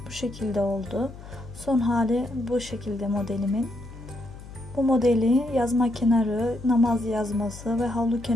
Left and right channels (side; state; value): left; noise; hum, 16 dB below the sound